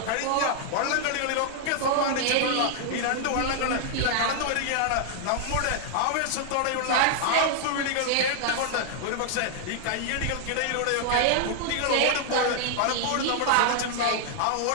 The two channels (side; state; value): both; different; correlation 0.00